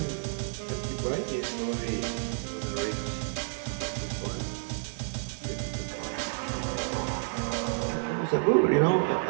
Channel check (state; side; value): silent; left; digital silence